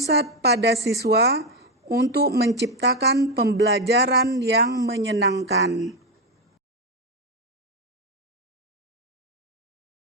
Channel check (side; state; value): both; normal; correlation 0.10